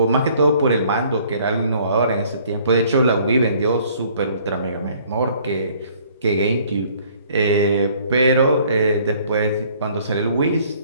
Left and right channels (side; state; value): both; inverted; correlation -0.59